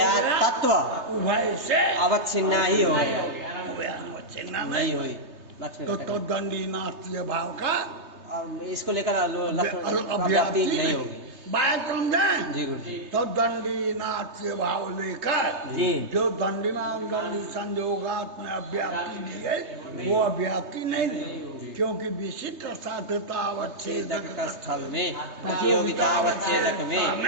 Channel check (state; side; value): late; left; 3.3 ms